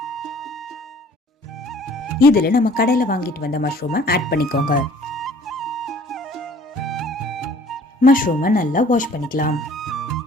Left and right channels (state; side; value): normal; both; correlation 0.53